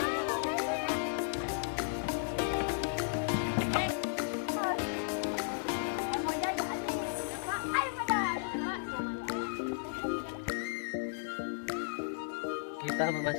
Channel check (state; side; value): silent; right; digital silence